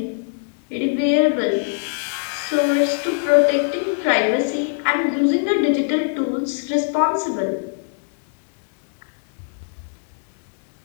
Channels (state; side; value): silent; right; digital silence